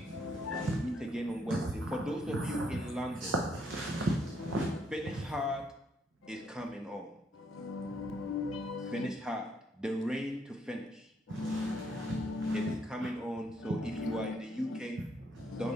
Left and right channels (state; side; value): normal; both; correlation 0.71